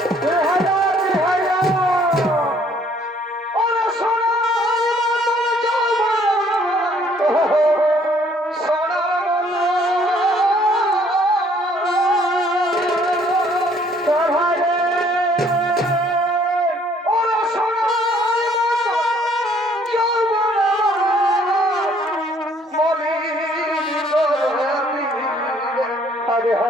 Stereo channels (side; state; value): both; normal; correlation 0.62